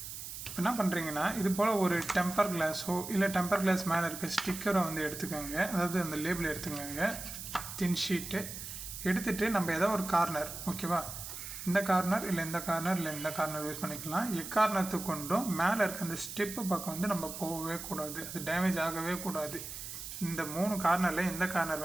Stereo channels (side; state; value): right; noise; hiss, 9 dB below the sound